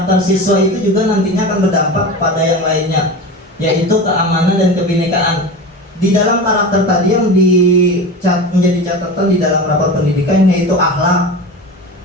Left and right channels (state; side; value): normal; both; correlation 0.28